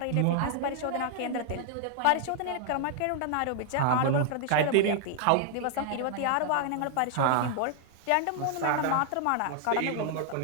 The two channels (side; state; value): both; different; correlation 0.00